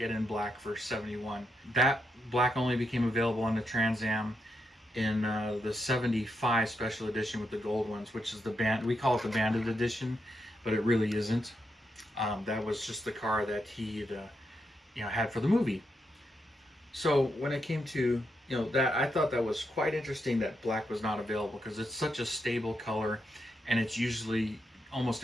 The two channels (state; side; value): normal; both; correlation 0.82